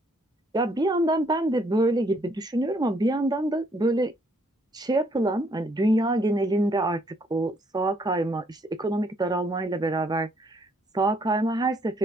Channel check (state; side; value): normal; both; correlation 0.68